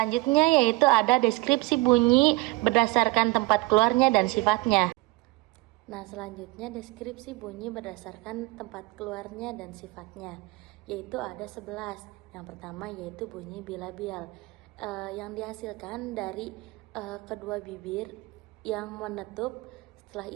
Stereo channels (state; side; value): quieter; left; 22.0 dB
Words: yaitu ada deskripsi bunyi berdasarkan tempat keluarnya dan sifatnya. Nah, selanjutnya deskripsi bunyi berdasarkan tempat keluarnya dan sifatnya, yaitu ada 11. Yang pertama yaitu bunyi bilabial, yang dihasilkan dari kedua bibir yang menutup, setelah